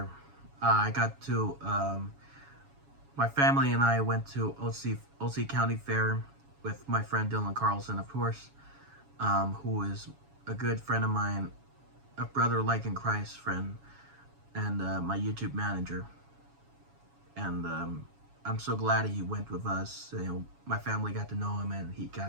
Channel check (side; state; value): left; late; 7.2 ms